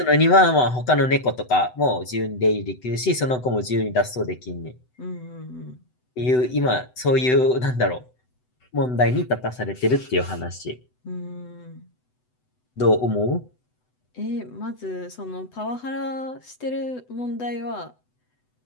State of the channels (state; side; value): late; right; 8.0 ms